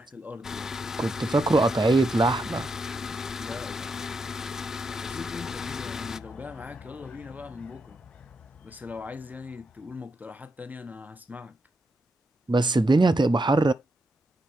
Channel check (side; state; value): both; normal; correlation 0.82